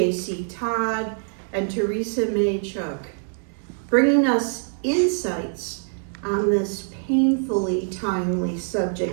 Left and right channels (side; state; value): left; silent; digital silence